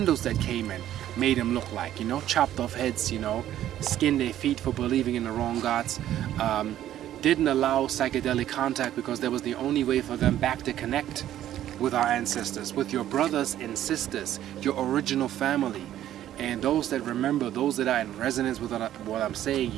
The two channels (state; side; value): quieter; left; 12.2 dB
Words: that came in made them look like, you know, chopped off heads, you know, skinned their feet for believing in the wrong gods. Didn't allow psychedelic contact because that was the only way for them back to connect with our ancestors, with your brothers and sisters, your original family. And those that remember, those that are in resonance with what I'm saying,